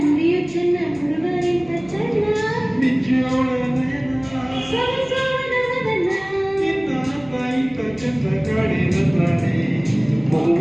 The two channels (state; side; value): noise; right; hum, 23 dB below the sound